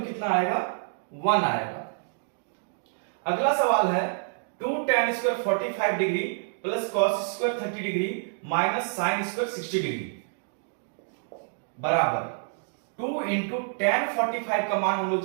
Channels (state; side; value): silent; left; digital silence